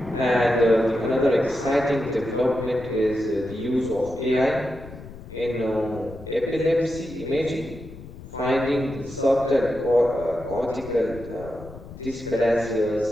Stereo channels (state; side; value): noise; left; rumble, 16 dB below the sound